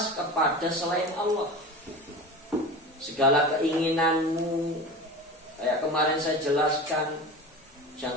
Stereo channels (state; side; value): normal; both; correlation 0.31